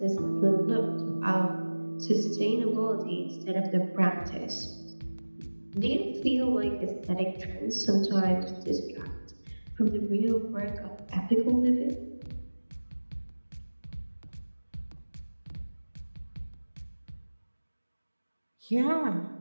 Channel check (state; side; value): inverted; both; correlation -1.00